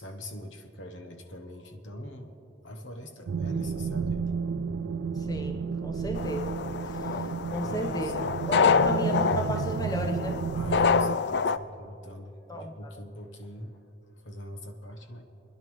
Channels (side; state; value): both; normal; correlation -0.02